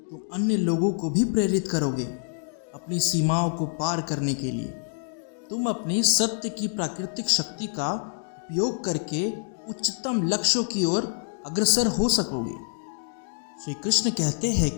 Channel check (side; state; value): right; silent; digital silence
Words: तुम अन्य लोगों को भी प्रेरित करोगे अपनी सीमाओं को पार करने के लिए। तुम अपनी सत्य की प्राकृतिक शक्ति का उपयोग करके उच्चतम लक्ष्यों की ओर अग्रसर हो सकोगे। श्री कृष्ण कहते हैं